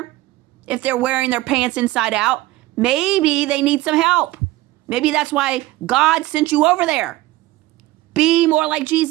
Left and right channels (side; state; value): left; quieter; 17.8 dB